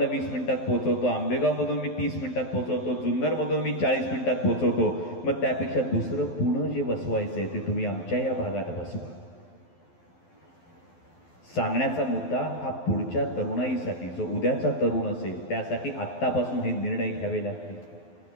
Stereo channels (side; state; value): right; late; 12 ms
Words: 20 मिनिटात पोहोचवतो, आंबेगावमधून मी 30 मिनिटात पोहोचवतो, जुन्नरमधून मी 40 मिनिटात पोहोचवतो. मग त्यापेक्षा दुसरं पुणे जे बसवायचंय ते तुम्ही आमच्या या भागात बसवा. सांगण्याचा मुद्दा हा पुढच्या तरुणाईसाठी, जो उद्याचा तरुण असेल त्यासाठी आत्तापासून हे निर्णय घ्यावे लागतील.